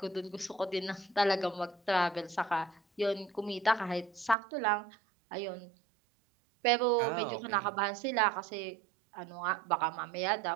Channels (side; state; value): left; drops out; at 4.4 s